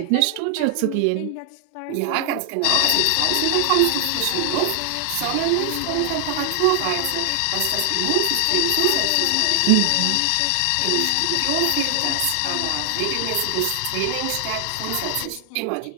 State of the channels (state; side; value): different; both; correlation 0.00